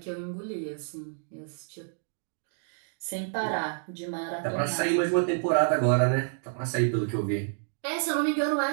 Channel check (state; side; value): silent; left; digital silence